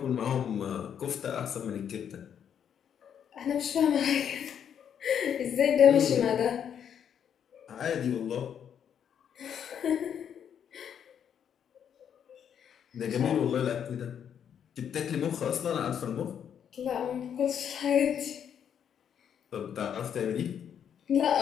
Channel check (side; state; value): right; quieter; 8.5 dB